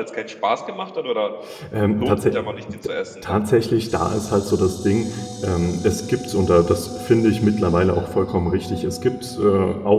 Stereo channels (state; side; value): identical; both; correlation 1.00